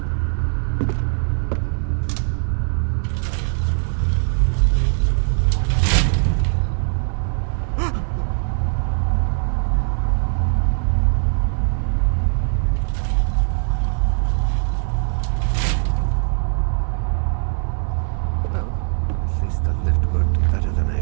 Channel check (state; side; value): silent; left; 61 dB below the other